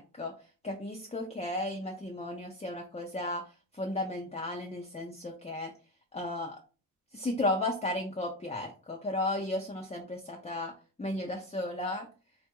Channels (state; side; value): normal; both; correlation 0.20